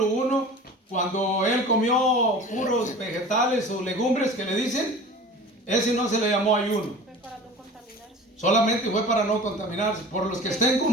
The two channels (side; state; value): both; normal; correlation 0.39